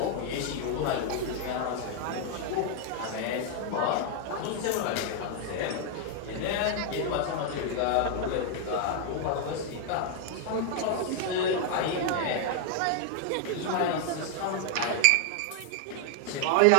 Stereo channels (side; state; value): both; different; correlation 0.00